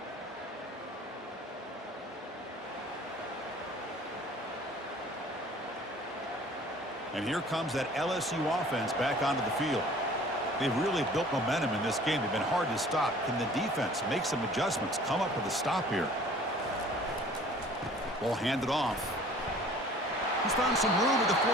And here comes that LSU offense back onto the field. They've really built momentum in this game. They've been hard to stop. Can the defense make some adjustments, come up with a stop here? Ball handed off. He's found some room at the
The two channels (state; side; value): normal; both; correlation 0.50